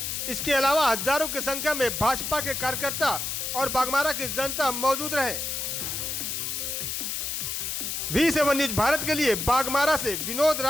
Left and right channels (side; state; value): left; noise; hiss, 3 dB below the sound